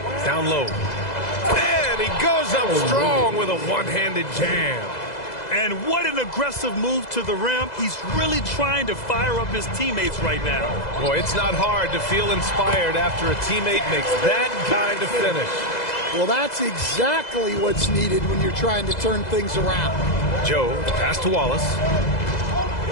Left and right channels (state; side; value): late; right; 2.0 ms